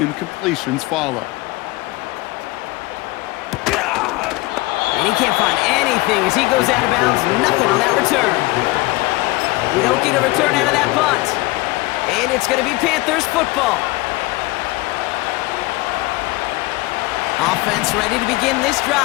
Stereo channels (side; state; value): right; quieter; 21.2 dB